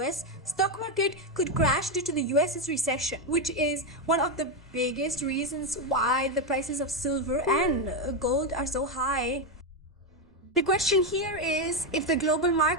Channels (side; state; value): both; normal; correlation 0.07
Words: stock market could crash due to the US's recession, which is one of the biggest reasons why the prices of silver and gold are so high. The question here is, if the global